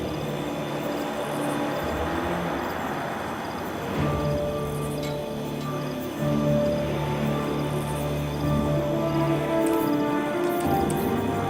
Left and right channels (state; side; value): identical; both; correlation 1.00